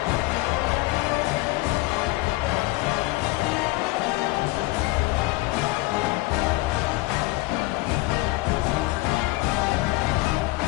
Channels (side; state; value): right; quieter; 20.6 dB